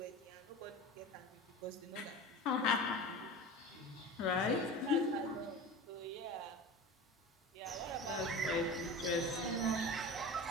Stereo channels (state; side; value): normal; both; correlation 0.32